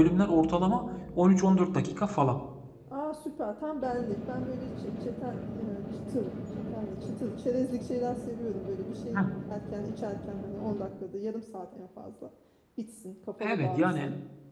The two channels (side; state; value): both; identical; correlation 1.00